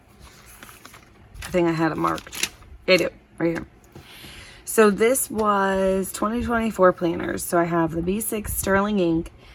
I think I had it marked. I do, right here. So this was 2024 planners. So I have the B6 Sterling ink,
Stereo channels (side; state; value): both; identical; correlation 1.00